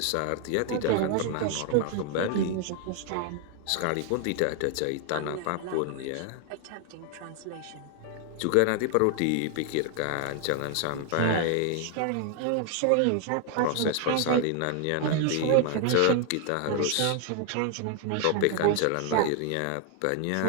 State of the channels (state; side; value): different; both; correlation 0.00